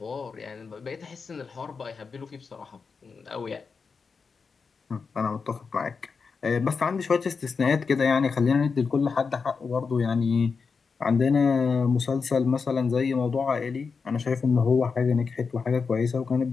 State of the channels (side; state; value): right; quieter; 5.2 dB